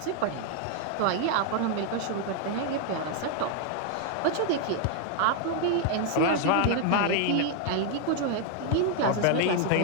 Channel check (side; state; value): both; different; correlation 0.00